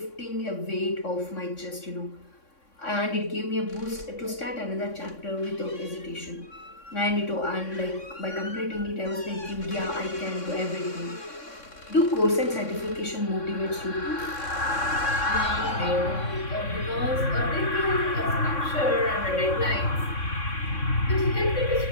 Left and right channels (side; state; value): right; late; 3.6 ms